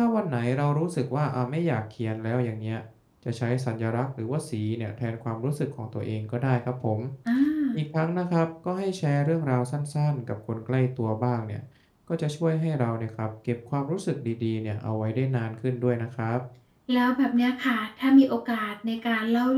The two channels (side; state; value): both; identical; correlation 1.00